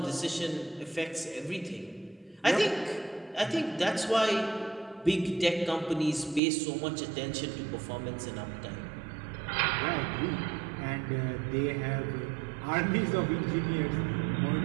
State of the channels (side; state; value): left; drops out; at 6.4 s